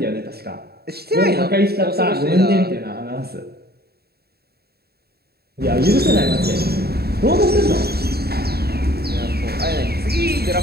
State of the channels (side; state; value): left; late; 0.46 ms